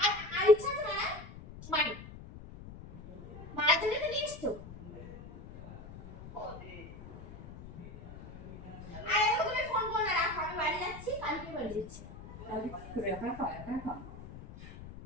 আর ইচ্ছা আছে না? মারি। মারার জন্য তো নিয়ে এসছো। আর এখন তুমি ফোন করো না, রাখো, আমি বাড়ি যাচ্ছি, কালকে বাড়ি যাচ্ছি। তাহলে কি করে একা একা একা একা?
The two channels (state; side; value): noise; left; rumble, 14 dB below the sound